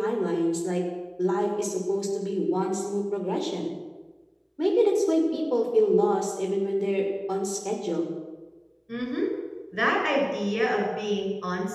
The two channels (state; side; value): identical; both; correlation 1.00